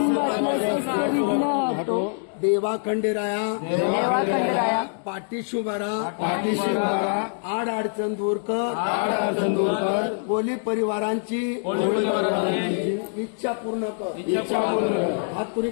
शस्त्र विघ्न हटो देवा खंडेराया देवा खंडेराया पाठीशी उभारा आड अडचण दूर कर कोली परिवारांची इच्छा पूर्ण कर. हात पुरी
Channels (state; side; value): silent; right; digital silence